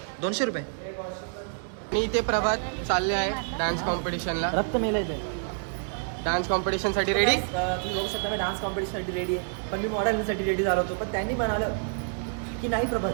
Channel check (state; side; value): silent; left; 59 dB below the other